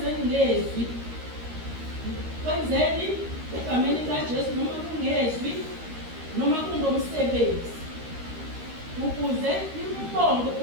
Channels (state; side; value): late; left; 13 ms